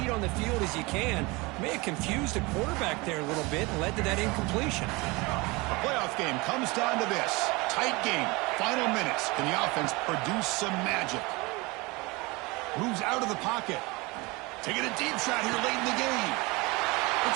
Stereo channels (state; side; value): quieter; left; 24.7 dB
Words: on the field as you can. May have confused the quarterback there a little bit and led to that incompletion. A playoff game comes down to this. Tight game. Final minutes. Can the offense produce some magic? Moves out of the pocket. Taking a deep shot here late in the game.